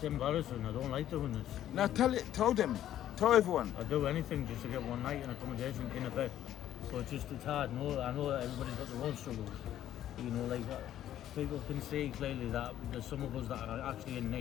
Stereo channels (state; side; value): quieter; right; 11.9 dB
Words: embarrassing. I don't like doing this. Now tell them. Tell everyone. I'd do anything just to get one night in accommodation in a bed. So it's hard. No, I know that everybody's got their own struggles. You know, like people can see clearly that there's some of us that are actually in